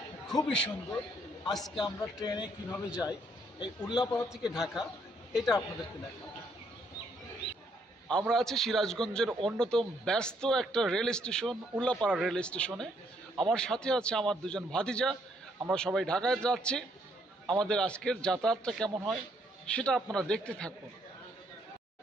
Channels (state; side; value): normal; both; correlation 0.70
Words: খুবই সুন্দর। আজকে আমরা ট্রেনে কিভাবে যাই এই উল্লাপাড়া থেকে ঢাকা, এটা আপনাদেরকে দেখাবো। আমরা আছি সিরাজগঞ্জের অন্যতম ব্যস্ত একটা রেল স্টেশন, উল্লাপাড়া রেল স্টেশনে। আমার সাথে আছে আমার দুজন ভাতিজা। আমরা সবাই ঢাকায় যাচ্ছি। আমাদের আজকের যাতায়াতটা কেমন হয় সেটা আপনারা দেখতে থাকুন।